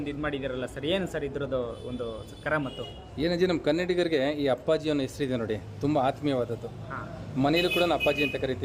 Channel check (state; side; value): identical; both; correlation 1.00